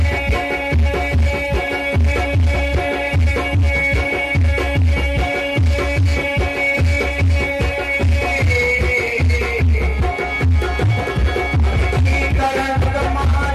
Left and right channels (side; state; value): both; identical; correlation 1.00